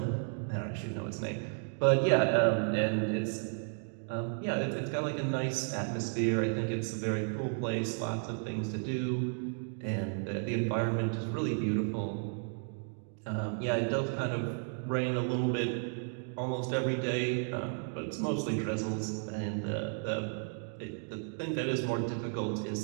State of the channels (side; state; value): left; silent; 55 dB below the other